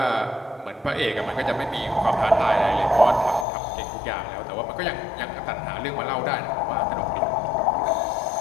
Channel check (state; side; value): drops out; right; at 3.5 s